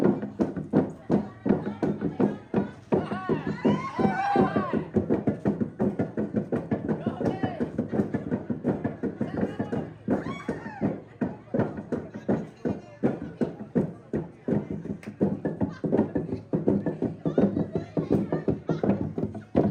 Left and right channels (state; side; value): identical; both; correlation 1.00